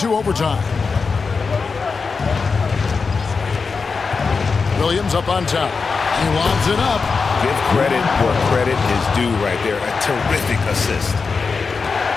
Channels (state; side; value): quieter; right; 4.8 dB